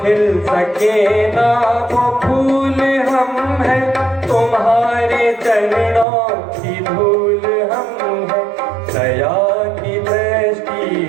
सके ना वो फूल हम हैं, तुम्हारे चरणों की धूल हम हैं। दया की दृष्टि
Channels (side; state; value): left; drops out; at 6.1 s